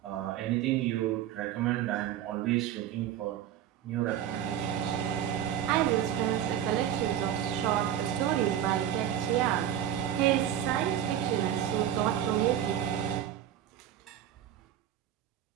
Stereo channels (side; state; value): left; quieter; 10.7 dB